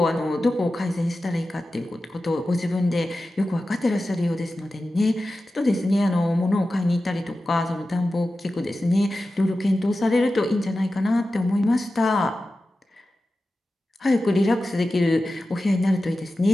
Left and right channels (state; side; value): normal; both; correlation 0.94